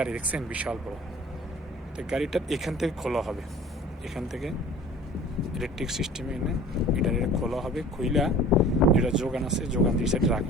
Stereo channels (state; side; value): normal; both; correlation 0.45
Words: দেখছেন বিশাল বড়। তো গাড়িটা এখান থেকে খোলা হবে, এখান থেকে ইলেকট্রিক সিস্টেমে এনে এটা খোলা হবে। খুইলা যেটা যোগান আছে, যোগান দিয়ে সাইড